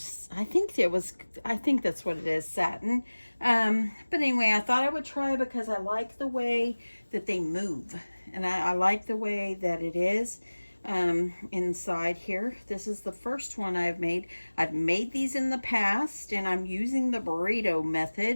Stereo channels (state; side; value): inverted; both; correlation -1.00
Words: I think that's what it is, satin. But anyway, I thought I would try because I like the way that they move, and I like the way that it is inside here. This is the first one I've made. I've made these in the past, and I'm using the burrito